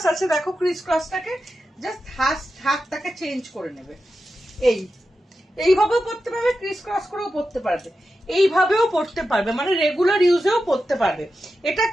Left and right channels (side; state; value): both; normal; correlation 0.90